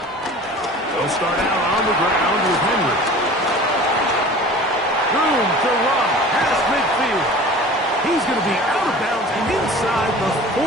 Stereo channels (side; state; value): both; normal; correlation 0.41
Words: They'll start out on the ground with Henry. Room to run past midfield. He's going to be out of bounds inside the